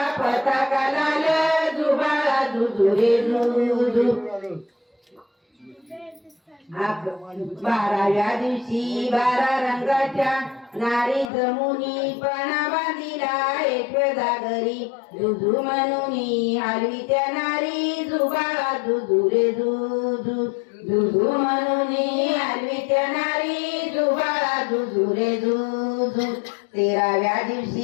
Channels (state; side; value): drops out; right; at 11.3 s